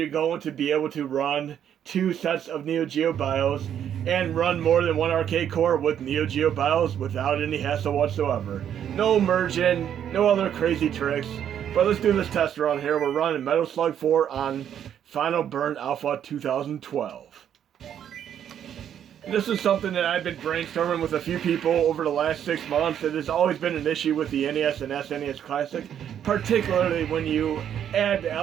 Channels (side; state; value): left; quieter; 9.5 dB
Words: going to be able to run two sets of NEO-GEO BIOS and run more than one arcade core with NEO-GEO BIOS without any hassle whatsoever. No merging, no other crazy tricks. But let's do this test run here. We're running Metal Slug 4 on Final Burn Alpha 2012. This is something that I've been brainstorming with a few people over the last 6 months. It has always been an issue with the NES and SNES Classic, particularly when you add the